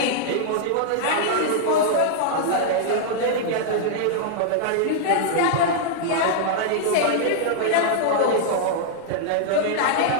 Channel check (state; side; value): different; both; correlation -0.01